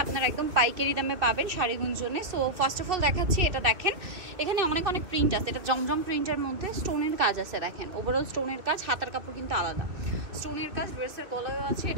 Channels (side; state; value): left; late; 2.3 ms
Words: আপনারা একদম পাইকারি দামে পাবেন শাড়িগুঞ্জনে। সো ফার্স্ট অফ অল দেখাচ্ছি, এটা দেখেন, এখানে অনেক অনেক প্রিন্ট আছে। এটা জমজম প্রিন্টের মধ্যে স্টোনের কাজ আছে, দেখেন ওভারঅল স্টোনের কাজ, হাতার কাপড় কিন্তু আলাদা স্টোনের কাজ, ড্রেসের গলায়ও আছে।